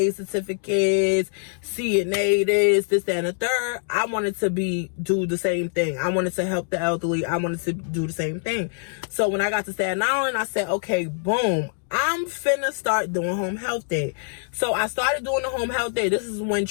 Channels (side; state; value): right; silent; digital silence